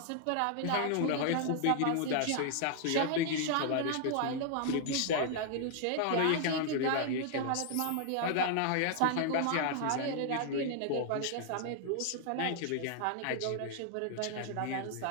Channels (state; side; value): different; both; correlation 0.00